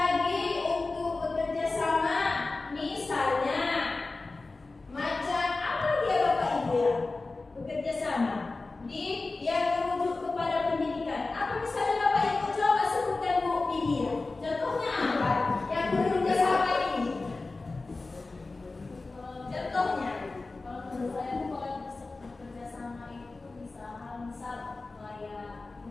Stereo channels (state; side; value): quieter; right; 3.5 dB